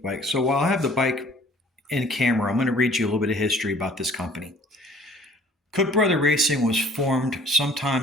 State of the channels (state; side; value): normal; both; correlation 0.54